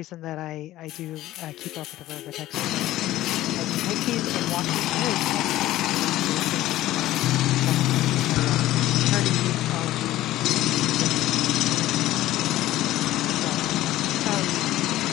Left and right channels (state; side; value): quieter; right; 15.1 dB